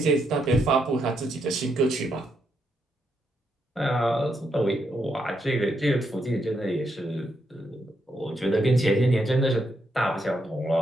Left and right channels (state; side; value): normal; both; correlation 0.79